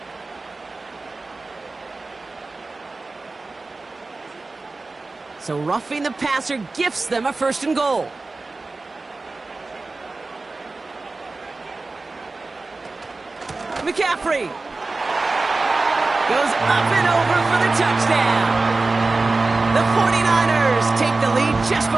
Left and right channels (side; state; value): left; quieter; 3.5 dB